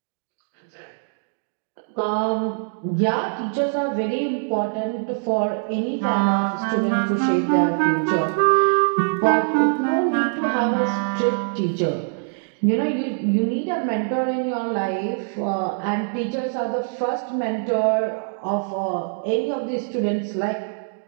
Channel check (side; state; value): left; silent; 63 dB below the other